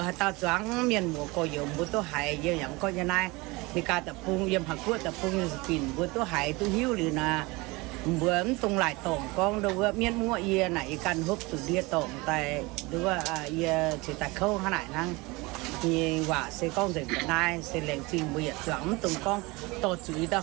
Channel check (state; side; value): quieter; left; 24.1 dB